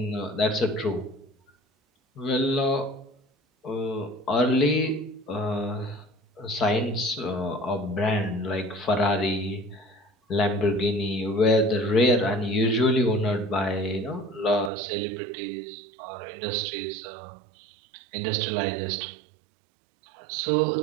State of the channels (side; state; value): left; drops out; at 14.7 s